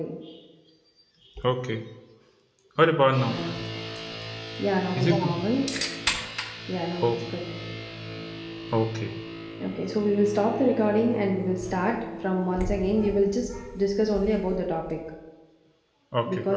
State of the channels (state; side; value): identical; both; correlation 1.00